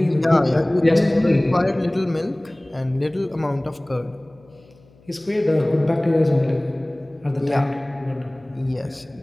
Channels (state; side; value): noise; left; hum, 28 dB below the sound